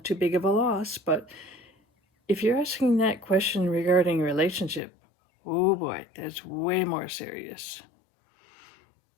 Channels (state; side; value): drops out; right; at 4.8 s